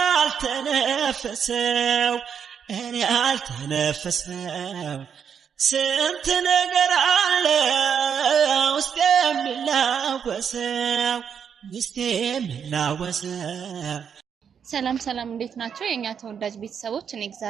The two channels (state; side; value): quieter; left; 7.4 dB